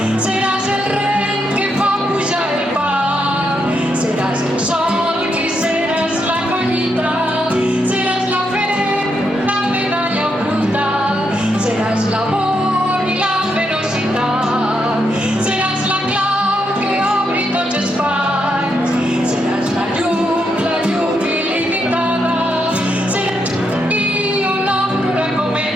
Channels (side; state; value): both; normal; correlation 0.80